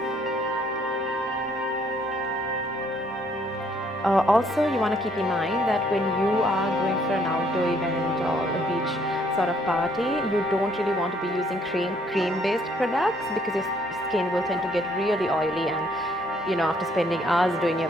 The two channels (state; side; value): normal; both; correlation 0.66